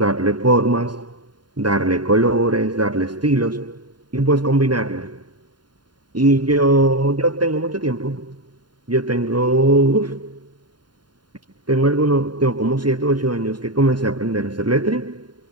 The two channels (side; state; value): left; late; 0.71 ms